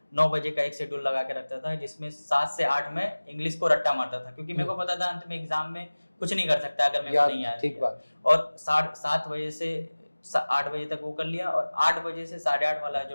9 बजे का एक शेड्यूल लगा के रखता था, जिसमें 7 से 8 में इंग्लिश को रट्टा मारता था, क्योंकि मेरे को पता था अंत में एग्जाम में कुछ नहीं कर सकता अगर मेरे को नहीं आया। ठीक बात। और 7 बजे से 8 बजे तक वो कर लिया, और 8 बजे से 8:30 वाला जो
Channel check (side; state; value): both; inverted; correlation -1.00